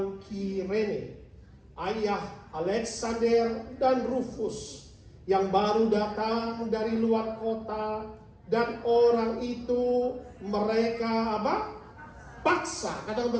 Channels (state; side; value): identical; both; correlation 1.00